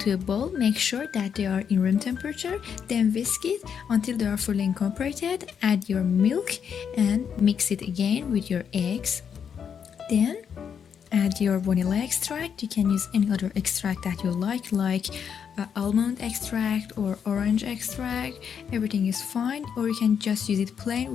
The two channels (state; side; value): quieter; right; 7.5 dB